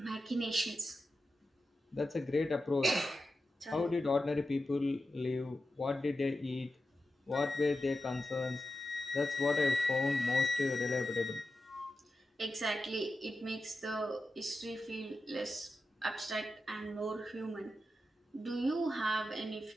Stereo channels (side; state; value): both; normal; correlation 0.91